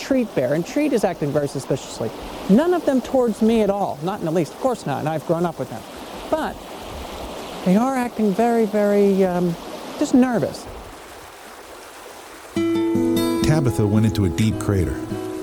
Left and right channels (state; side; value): identical; both; correlation 1.00